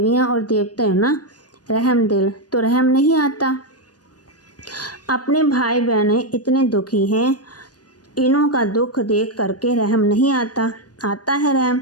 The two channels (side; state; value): right; late; 0.69 ms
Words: और देवता हो ना, रहम दिल। तो रहम नहीं आता? अपने भाई बहनें इतने दुखी हैं, इन्हों का दुख देख करके रहम नहीं आता? आता है रहम।